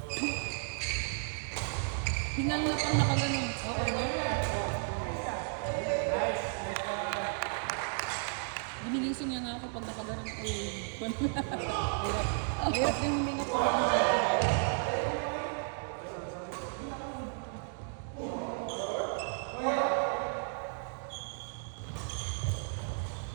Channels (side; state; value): left; silent; 55 dB below the other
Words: Hingal na pang nakaganon. Okay na. Ginigising niya nga ako pag nakaganon ko. Hirap din huminga po.